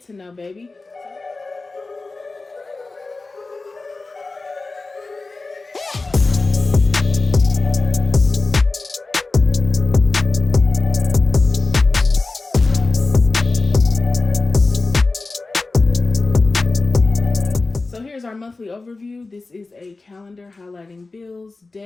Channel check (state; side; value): quieter; right; 3.5 dB